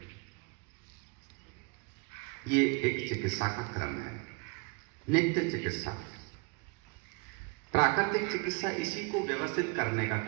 ये एक चिकित्सा का क्रम है, नित्य चिकित्सा। प्राकृतिक चिकित्सा इसी को व्यवस्थित करने का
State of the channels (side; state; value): left; quieter; 31.8 dB